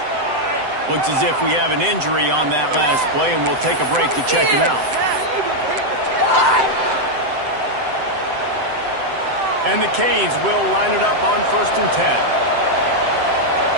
Looks as if we have an injury on that last play, and we'll take a break to check him out. And the Canes will line it up on 1st and 10.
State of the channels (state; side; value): late; left; 7.8 ms